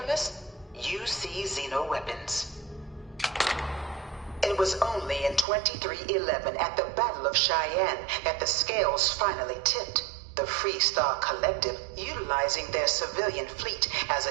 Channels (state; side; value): drops out; left; at 5.5 s